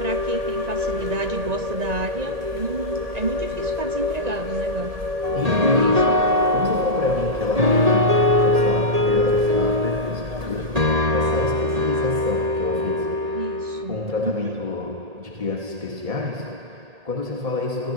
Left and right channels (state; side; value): late; left; 1.7 ms